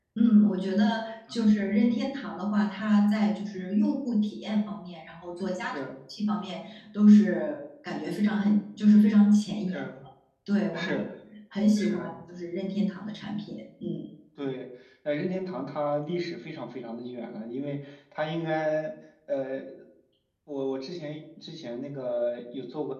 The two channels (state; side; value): identical; both; correlation 1.00